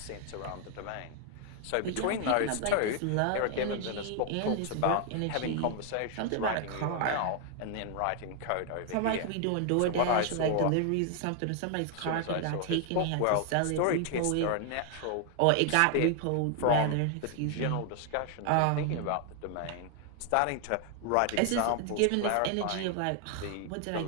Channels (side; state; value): both; different; correlation 0.00